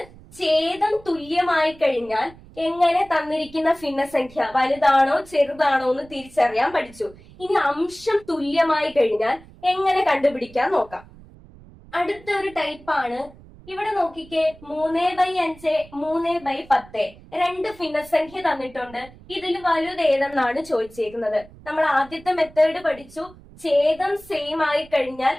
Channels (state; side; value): noise; right; rumble, 22 dB below the sound